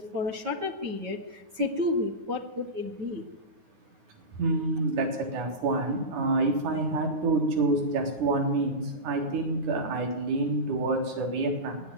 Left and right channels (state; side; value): late; left; 9.5 ms